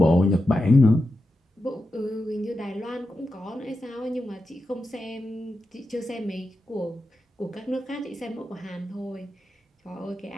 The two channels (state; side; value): normal; both; correlation 0.89